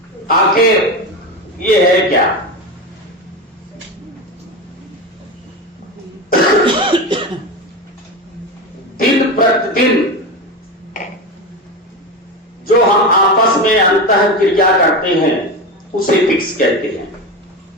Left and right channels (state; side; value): normal; both; correlation 0.20